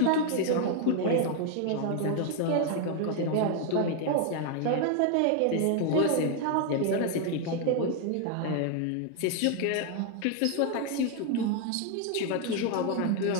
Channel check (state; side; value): different; both; correlation 0.01